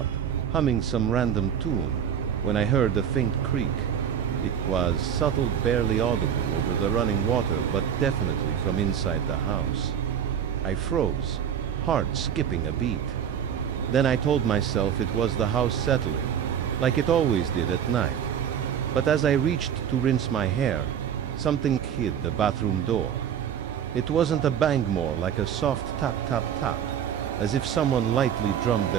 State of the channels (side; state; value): left; quieter; 8.7 dB